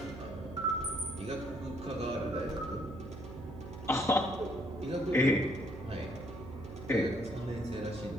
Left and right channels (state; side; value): noise; right; hum, 11 dB below the sound